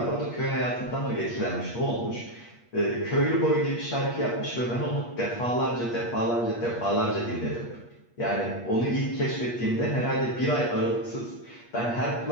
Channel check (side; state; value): right; late; 8.4 ms